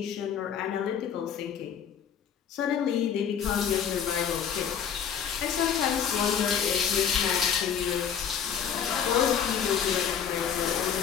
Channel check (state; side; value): quieter; right; 8.0 dB